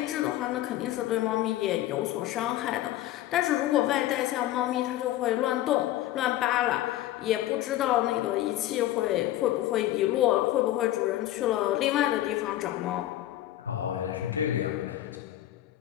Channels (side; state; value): right; quieter; 14.2 dB